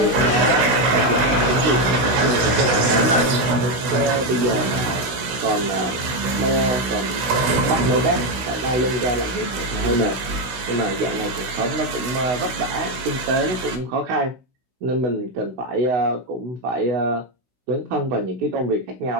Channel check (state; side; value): late; left; 16 ms